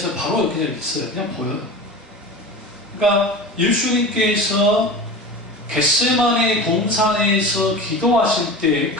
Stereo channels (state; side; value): normal; both; correlation 0.31